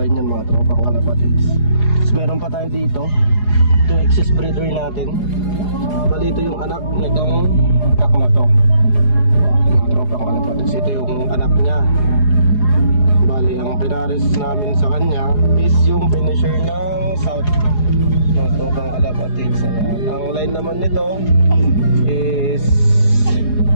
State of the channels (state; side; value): late; right; 4.8 ms